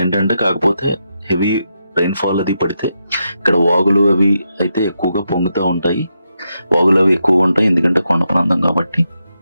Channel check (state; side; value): inverted; both; correlation -0.84